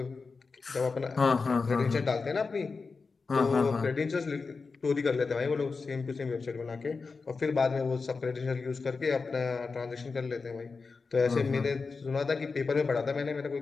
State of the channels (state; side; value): quieter; right; 4.5 dB